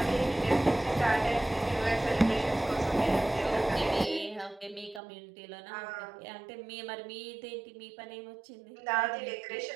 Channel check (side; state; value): left; drops out; at 5.0 s